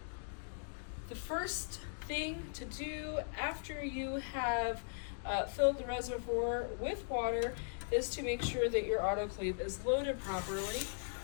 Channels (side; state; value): right; silent; digital silence